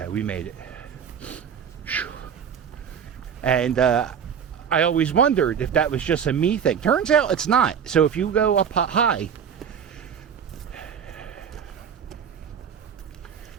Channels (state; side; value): quieter; left; 7.7 dB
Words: we made it. And I always wondered if that was just a me thing. Turns out it's not. So if you go up high